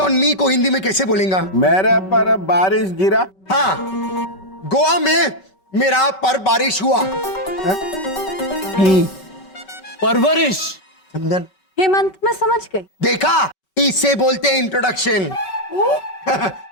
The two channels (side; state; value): right; late; 5.3 ms